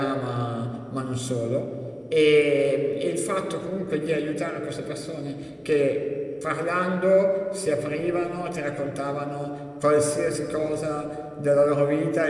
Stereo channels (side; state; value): both; identical; correlation 1.00